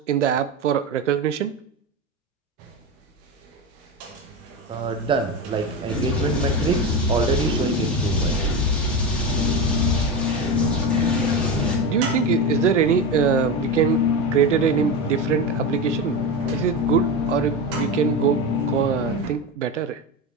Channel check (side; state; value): both; normal; correlation 0.19